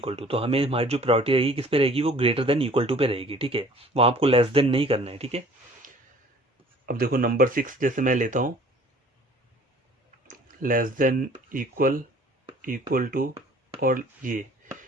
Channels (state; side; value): normal; both; correlation 0.51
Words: टू, तो हमें हमारी जो प्रायोरिटी रहेगी किस पे रहेगी, वो ग्रेटर देन इक्वल टू पे रहेगी, ठीक है। वहाँ आपको लेस देन नहीं करना है, ठीक है। अब देखो नंबर 6 जैसे मैं लेता हूँ, less than equal, equal to और ये,